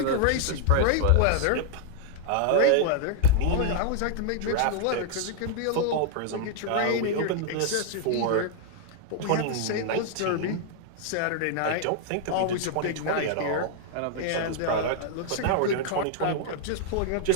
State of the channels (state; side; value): different; both; correlation 0.00